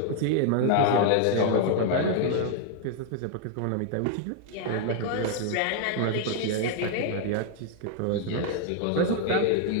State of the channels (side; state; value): both; different; correlation 0.00